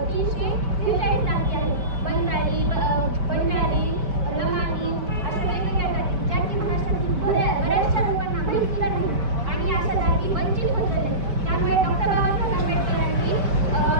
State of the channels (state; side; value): late; left; 4.6 ms